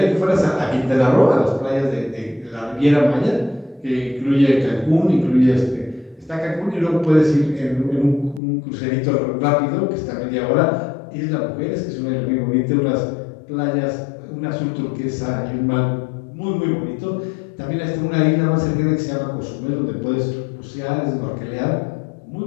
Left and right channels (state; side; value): drops out; right; at 8.4 s